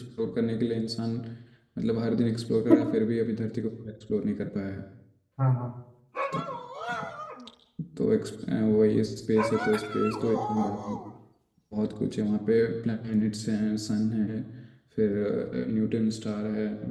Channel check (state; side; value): identical; both; correlation 1.00